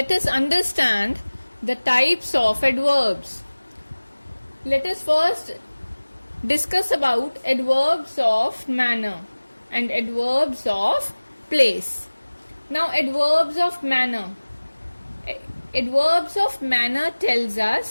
us understand the types of adverbs. Let us first discuss about adverbs of manner and adverbs of place. Now adverbs of manner. Adverbs of manner tells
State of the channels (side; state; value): both; inverted; correlation -1.00